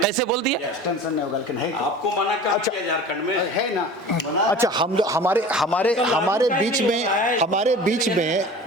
बोल दिया? एक्सटेंशन नहीं होगा, लेकिन है आपको मना कर दिया झारखंड में है ना। अच्छा, हमारे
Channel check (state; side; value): normal; both; correlation 0.39